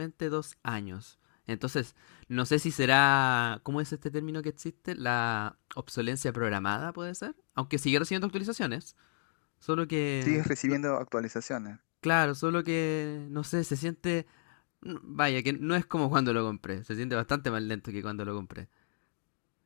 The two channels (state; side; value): silent; right; digital silence